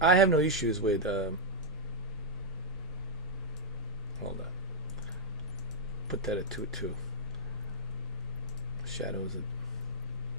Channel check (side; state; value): both; normal; correlation -0.04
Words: have no issues with, hold on. Put that at 2.2. Shadows.